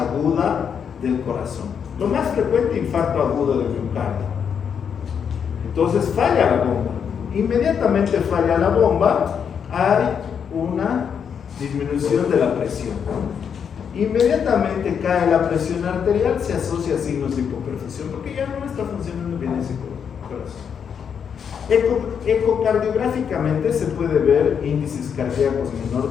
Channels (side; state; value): right; quieter; 7.3 dB